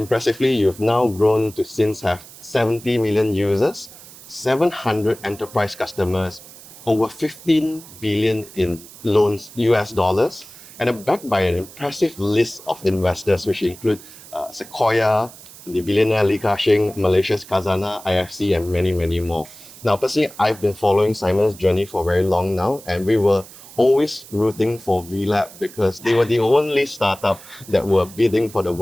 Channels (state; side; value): noise; right; hiss, 19 dB below the sound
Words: you've now grown to since have 70 million users, 700 enterprise customers, over 15 billion in loans US dollars, and are backed by an impressive list of investors, which include Sequoia, the billionaire Li Ka-shing, Malaysia's Khazanah, IFC, and many, many more. Now, personally, I've been following Simon's journey for very long now, and we were always rooting for WeLab because they were the only startup that were bidding for the